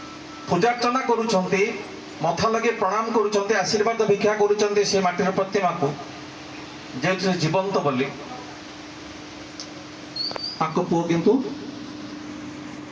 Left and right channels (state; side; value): identical; both; correlation 1.00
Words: ପୂଜାର୍ଚ୍ଚନା କରୁଛନ୍ତି, ମଥା ଲଗେଇ ପ୍ରଣାମ କରୁଛନ୍ତି, ଆଶୀର୍ବାଦ ଭିକ୍ଷା କରୁଛନ୍ତି ସେ ମାଟିର ପ୍ରତିମାକୁ, ଯେହେତୁ ସେ ଜୀବନ୍ତ ବୋଲି। ତାଙ୍କ ପୁଅ କିନ୍ତୁ